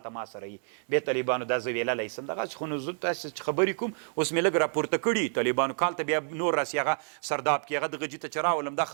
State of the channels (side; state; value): left; silent; digital silence